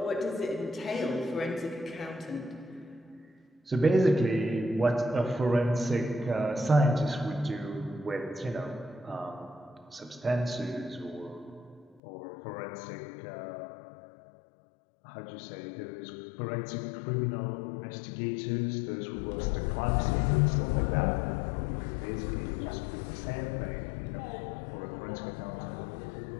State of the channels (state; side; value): drops out; right; at 12.0 s